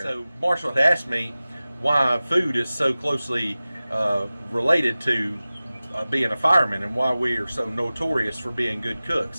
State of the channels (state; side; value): inverted; both; correlation -0.97